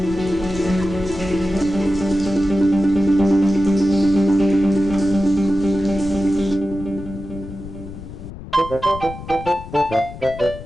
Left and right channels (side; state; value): left; noise; rumble, 13 dB below the sound